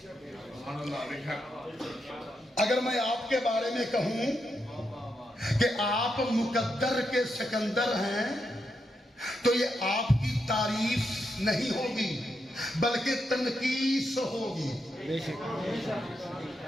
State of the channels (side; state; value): both; normal; correlation 0.83